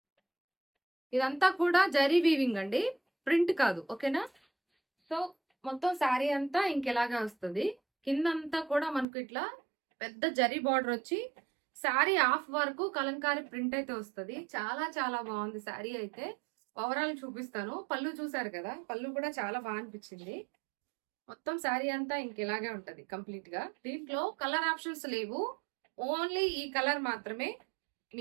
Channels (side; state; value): left; drops out; at 9.1 s